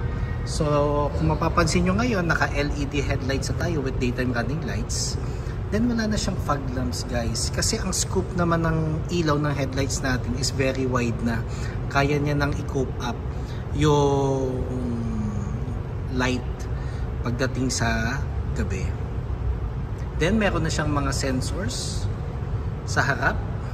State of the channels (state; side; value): identical; both; correlation 1.00